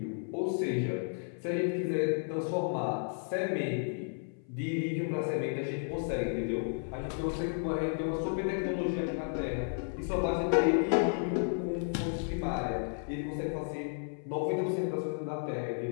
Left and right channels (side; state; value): right; silent; 56 dB below the other